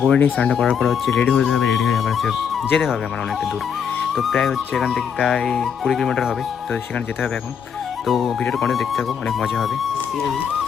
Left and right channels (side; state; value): right; quieter; 7.3 dB